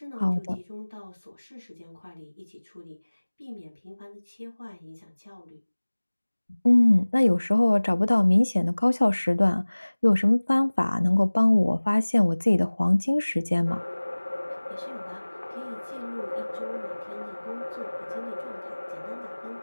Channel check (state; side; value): inverted; both; correlation -1.00